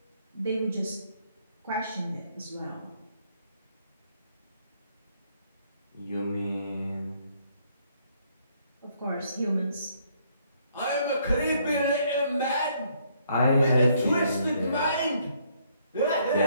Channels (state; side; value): inverted; both; correlation -0.68